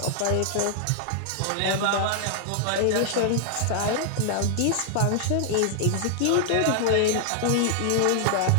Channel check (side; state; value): both; different; correlation 0.00